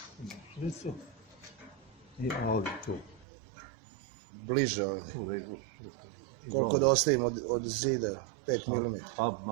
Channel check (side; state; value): left; drops out; at 3.2 s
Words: i ovdje tu. Bliže ovdje. Tu da izvučiš. Koliko da ostavimo od zida? 5 mm. Pa